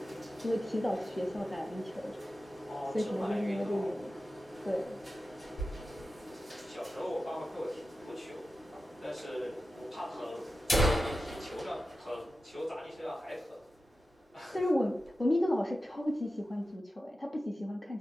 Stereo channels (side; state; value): both; normal; correlation 0.93